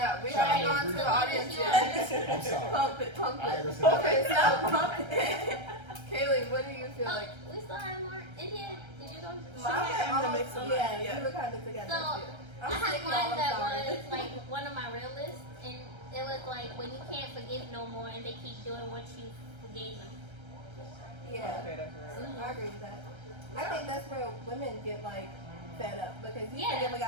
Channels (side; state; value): left; late; 1.3 ms